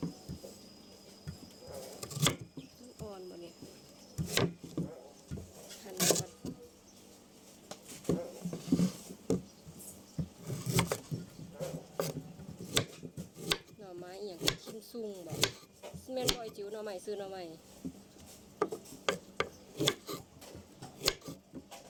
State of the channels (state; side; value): identical; both; correlation 1.00